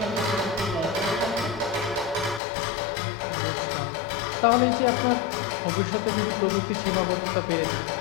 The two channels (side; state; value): right; drops out; at 2.4 s